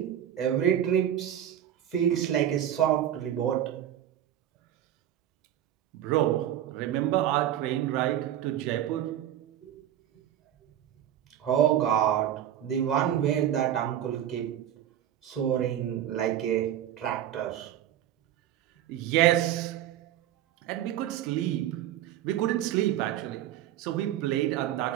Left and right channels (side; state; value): left; quieter; 11.3 dB